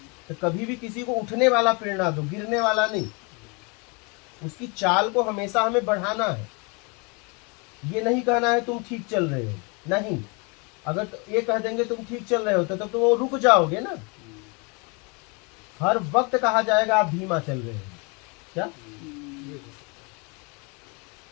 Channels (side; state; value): right; quieter; 31.3 dB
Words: तो कभी भी किसी को उठने वाला प्रेरणा दो, गिरने वाला नहीं। उसकी चाल को हमेशा हमें बढ़ाना है। ये नहीं कहना है तुम ठीक चल रहे हो, नहीं। अगर ये कह देंगे तुम ठीक चल रहे हो तो तब तो वो रुक जाओगे ना। हर वक्त कहा जाएगा आप धीमा चल रहे हो, क्या? ये हो सकता